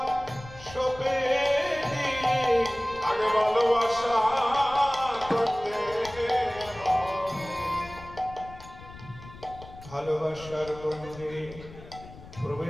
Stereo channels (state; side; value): noise; left; rumble, 17 dB below the sound